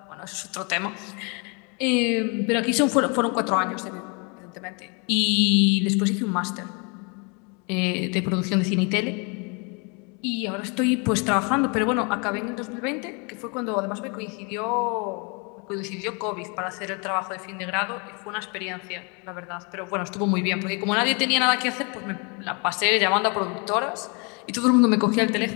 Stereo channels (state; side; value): quieter; right; 33.2 dB